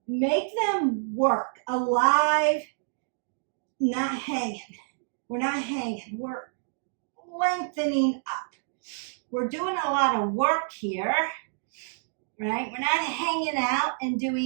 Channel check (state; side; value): silent; left; digital silence